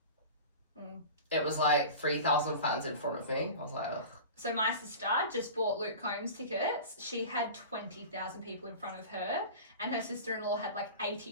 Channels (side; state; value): both; inverted; correlation -0.34